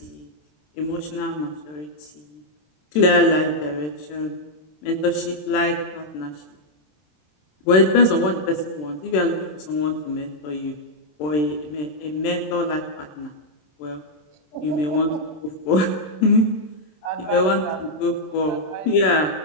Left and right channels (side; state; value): right; late; 27 ms